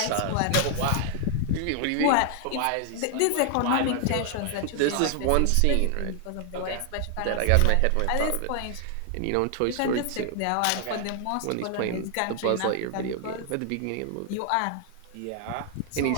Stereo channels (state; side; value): different; both; correlation 0.00